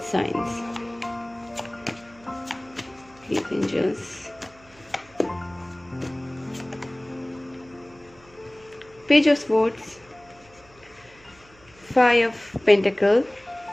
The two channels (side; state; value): right; noise; hum, 27 dB below the sound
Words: science. Please angels. Page of swords, five of pentacle,